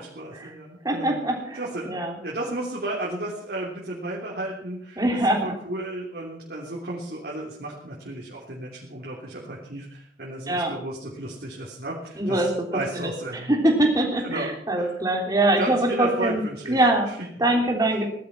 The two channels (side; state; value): both; normal; correlation 0.49